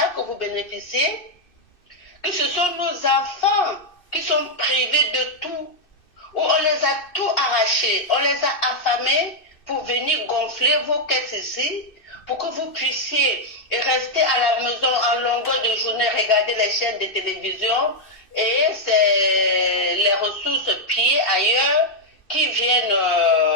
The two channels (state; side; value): late; right; 2.6 ms